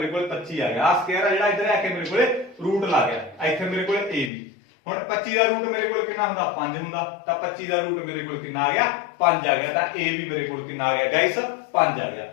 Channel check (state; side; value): drops out; right; at 4.3 s